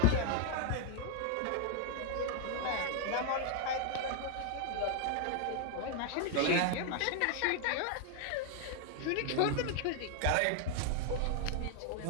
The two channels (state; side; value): different; both; correlation 0.00